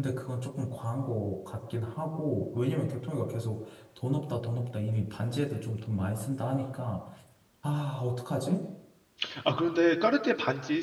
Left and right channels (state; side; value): identical; both; correlation 1.00